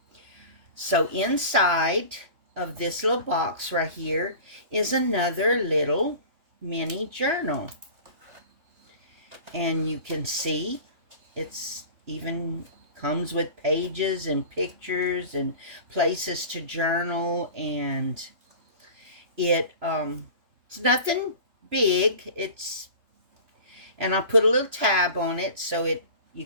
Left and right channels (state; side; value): late; left; 3.0 ms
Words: So inside of this little box right here is another little mini journal. And you can see it's even comes with pages and pictures and places to journal, and it's nothing big. And I put a little tab on it so you